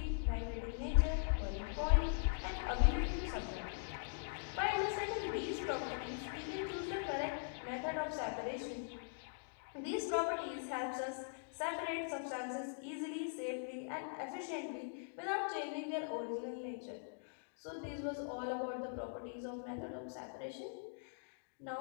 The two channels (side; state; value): right; silent; digital silence